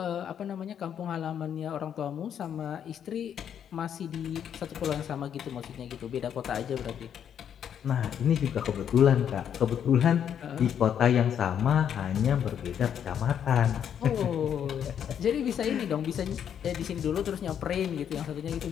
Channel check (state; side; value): quieter; right; 8.8 dB